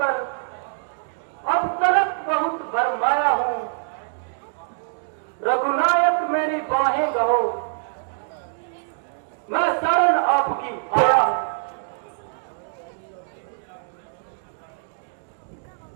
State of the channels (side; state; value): left; silent; digital silence